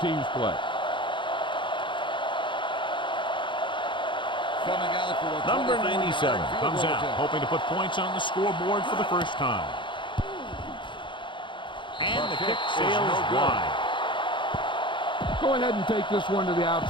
play. Number 97 comes out, hoping to put points on the scoreboard for the first time. And the kick sails wide. Go ahead and take this one to the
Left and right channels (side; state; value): right; late; 0.23 ms